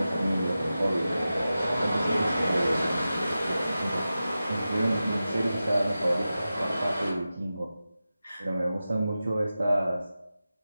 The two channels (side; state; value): both; inverted; correlation -0.93